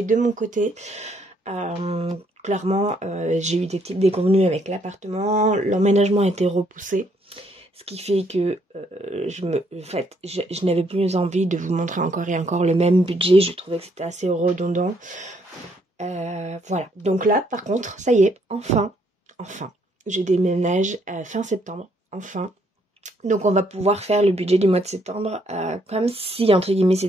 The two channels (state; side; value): normal; both; correlation 0.70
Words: de mon côté. Clairement, j'ai eu des petites déconvenues avec l'appartement, l'emménagement a été repoussé. Ce qui fait que je n'avais plus envie de vous montrer encore et encore le même budget. Je trouvais que c'était assez redondant. Voilà. Donc là, par contre, ça y est, enfin, je déménage fin septembre. Enfin. Donc on va pouvoir faire le budget du mois de septembre comme si, entre guillemets,